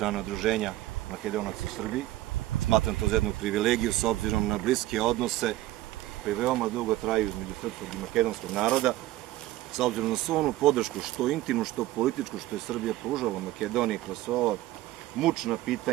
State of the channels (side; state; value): left; quieter; 16.1 dB